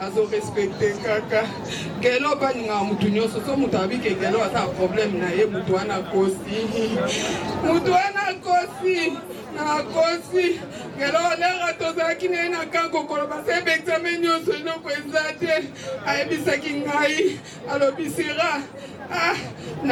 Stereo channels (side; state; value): both; identical; correlation 1.00